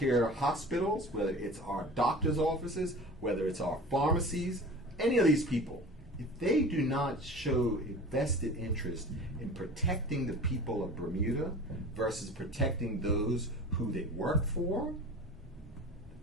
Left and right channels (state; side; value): normal; both; correlation 0.38